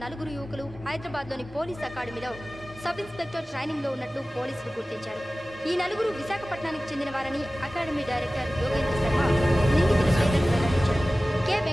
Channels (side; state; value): both; normal; correlation 0.97